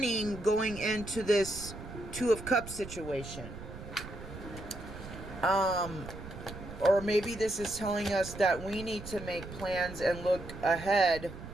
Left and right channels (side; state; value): right; noise; rumble, 12 dB below the sound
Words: going into this Two of Cups situation. Or maybe this is telling us that we need to make plans and look ahead